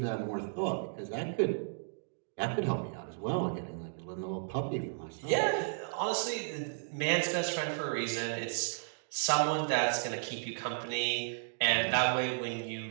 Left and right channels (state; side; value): silent; left; digital silence